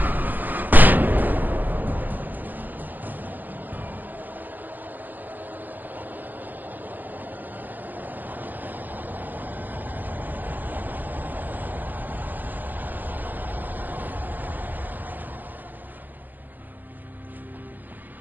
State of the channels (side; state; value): left; late; 0.085 ms